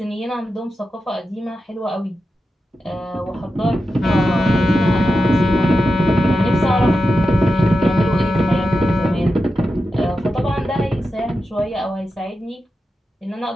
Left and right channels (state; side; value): normal; both; correlation 0.90